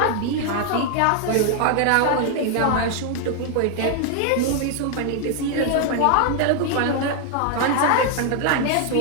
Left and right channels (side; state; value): both; different; correlation 0.00